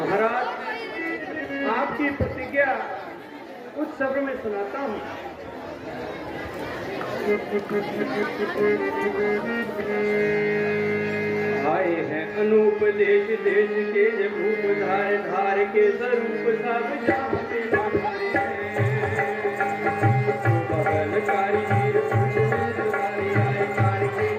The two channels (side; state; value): both; identical; correlation 1.00